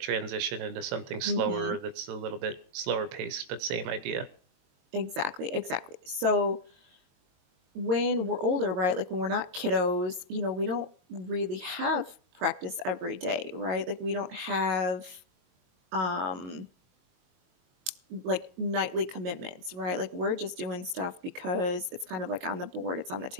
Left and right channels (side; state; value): left; late; 22 ms